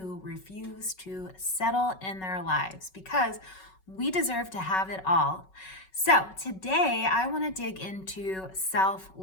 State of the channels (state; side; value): late; right; 5.3 ms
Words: refuse to settle in their lives because we deserve to have it all. So today I want to dig into